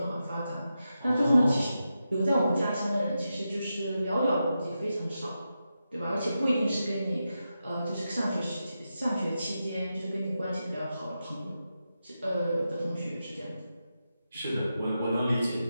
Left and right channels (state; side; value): inverted; both; correlation -0.89